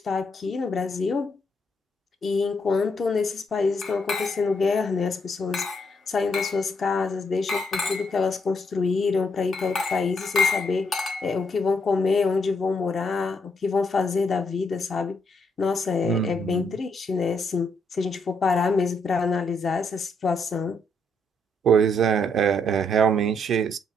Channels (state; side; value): normal; both; correlation 0.75